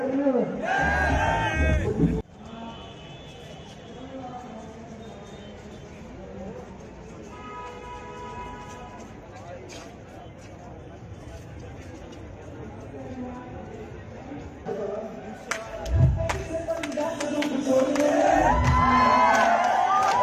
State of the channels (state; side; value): identical; both; correlation 1.00